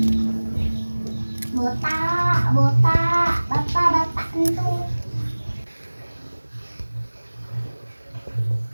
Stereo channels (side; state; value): both; inverted; correlation -1.00